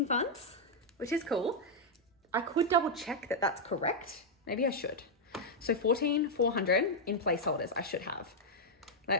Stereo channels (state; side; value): normal; both; correlation -0.02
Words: funds, which is cool. I could double check that that's correct. Maybe I should. So 14,400 in placeholders I should have.